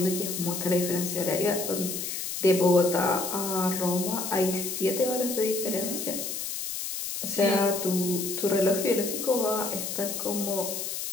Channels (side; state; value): left; noise; hiss, 4 dB below the sound